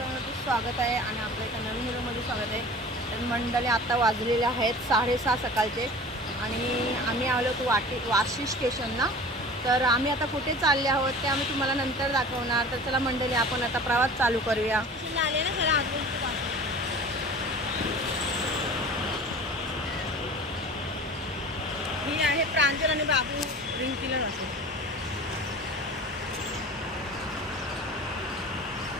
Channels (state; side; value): normal; both; correlation 0.40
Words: आहे आणि आपल्या एका नवीन व्हिडिओमध्ये स्वागत आहे. तर मंडळी आता वाजलेले आहेत 6:30 सकाळचे आणि आम्ही आलो होतो वाशी स्टेशनला. तर आम्ही आता कुठे चालले आहोत ते आम्ही तुम्हाला नंतर दाखवणार. तर चला मंडळी, आपण आता प्रवास चालू करूया. ही आहे प्रांजल आणि बाबू रिंकीला नसेल.